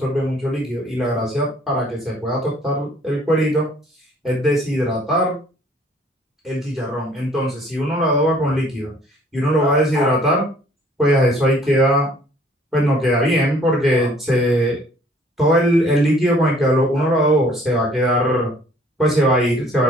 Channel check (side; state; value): both; normal; correlation 0.57